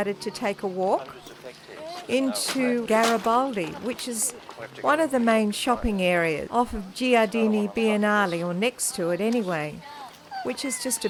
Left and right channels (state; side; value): identical; both; correlation 1.00